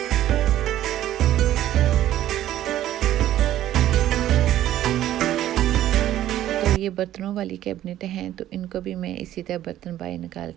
ये बर्तनों वाली कैबिनेट हैं तो इनको भी मैं इसी तरह बर्तन बाहर निकाल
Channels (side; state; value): left; quieter; 12.9 dB